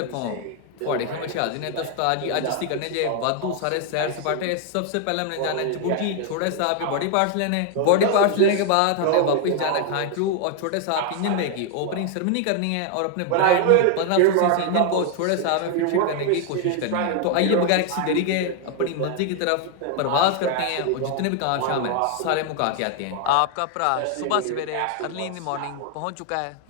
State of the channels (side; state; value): both; different; correlation 0.00